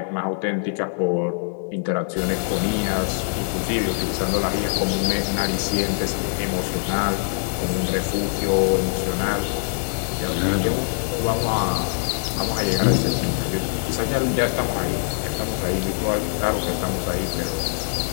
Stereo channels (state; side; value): silent; right; digital silence